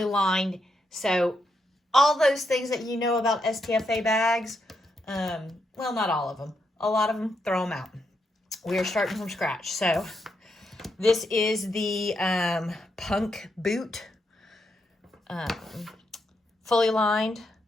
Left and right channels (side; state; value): both; normal; correlation 0.81